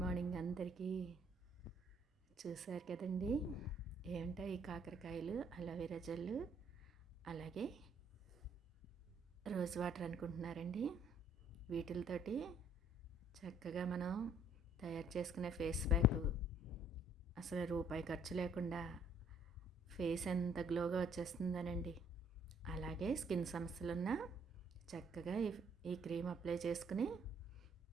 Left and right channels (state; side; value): normal; both; correlation 0.63